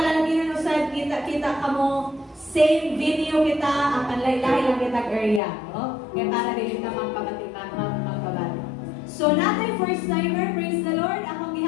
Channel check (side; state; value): right; drops out; at 5.4 s